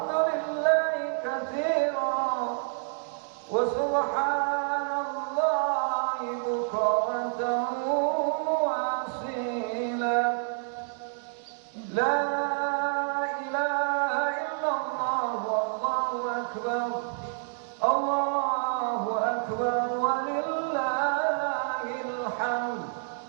katsira wa subhanallahi bukratan wa asila. La ilaha illallah wallahu akbar. Allahu akbar walillahil hamd.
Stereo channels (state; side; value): silent; left; digital silence